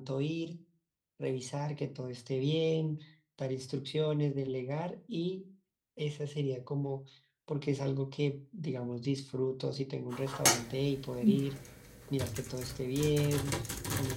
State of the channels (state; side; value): identical; both; correlation 1.00